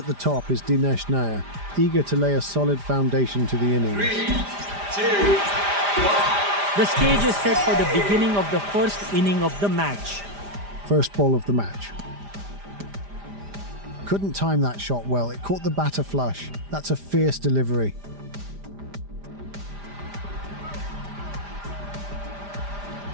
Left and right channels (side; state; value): left; late; 5.0 ms